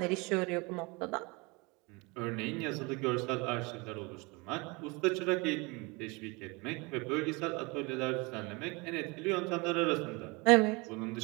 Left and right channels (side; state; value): left; quieter; 27.1 dB